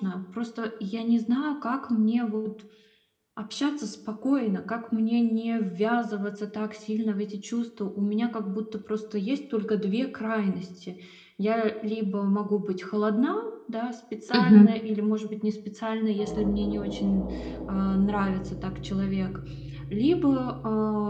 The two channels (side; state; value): both; identical; correlation 1.00